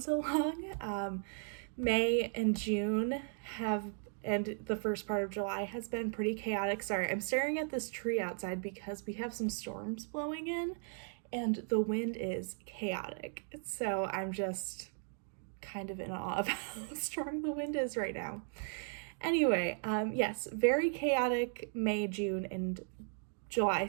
so long. May and June and the first part of July has been pretty chaotic. Sorry, I'm staring at this tree outside because we have some storms blowing in and the wind is chaotic. So I'm just kind of in awe of how strong the wind is right now. Anyway, yes, very chaotic May, June, and July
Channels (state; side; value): silent; left; 53 dB below the other